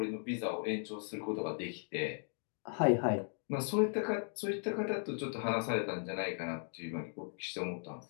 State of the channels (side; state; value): right; silent; 53 dB below the other